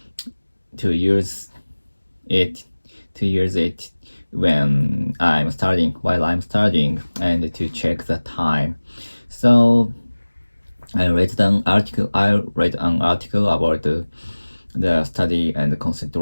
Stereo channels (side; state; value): both; inverted; correlation -1.00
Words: to use it to use it while I'm studying and to check the time. So I read an article about the study and